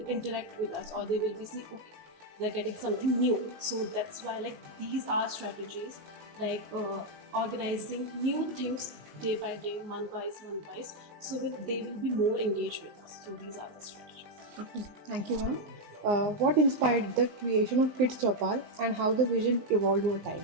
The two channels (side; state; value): left; late; 19 ms